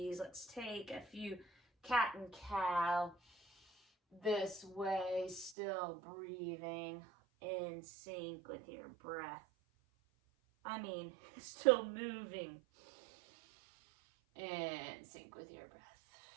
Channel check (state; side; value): drops out; left; at 5.6 s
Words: Let's take a few cat and cow this way, still breathing in sync with your breath. Still moving in sync with your breath.